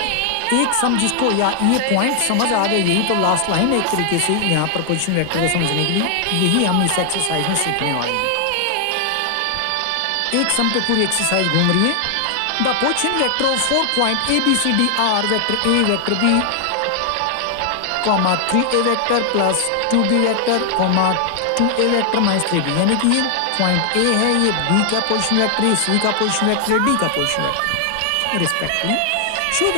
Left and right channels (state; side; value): different; both; correlation 0.00